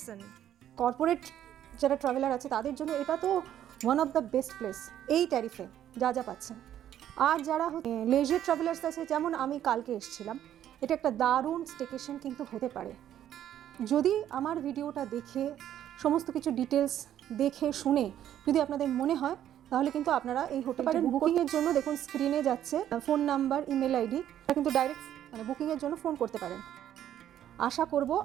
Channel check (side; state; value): left; quieter; 11.1 dB